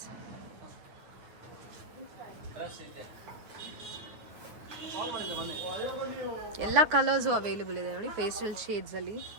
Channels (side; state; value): left; late; 9.6 ms